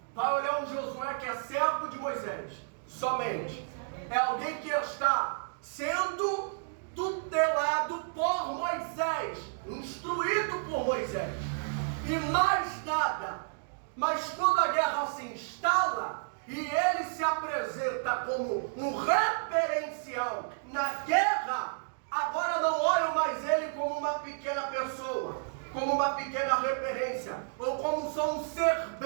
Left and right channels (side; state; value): left; silent; digital silence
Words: vai olhar um Josué que é servo de Moisés, somente. É alguém que está sendo tutelado por Moisés, instruído por Moisés, e mais nada. Mas quando a guerra se instala e ele se apresenta como um referencial na guerra, agora não olham mais ele como uma pequena pessoa, como uma pequena referência, ou como só um